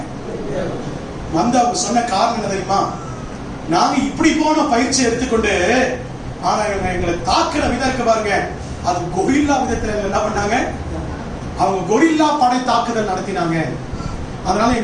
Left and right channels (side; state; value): both; identical; correlation 1.00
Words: வந்து அவங்க சொன்ன காரணம் என்ன தெரியுமா? நாங்க இப்படி போன பயிற்சி எடுத்துக்கொண்டு, ஆனா எங்களை தாக்குற விதம் இருக்கு பாருங்க, அது கொரில்லா விதத்துல என்ன பண்ணாங்க, அவங்க கொரில்லா படை தாக்குதல் நடத்தினாங்க. அதனால